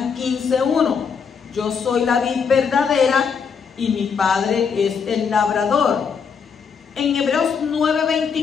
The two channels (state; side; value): quieter; right; 6.2 dB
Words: 15:1: yo soy la vid verdadera y mi Padre es el labrador. En Hebreos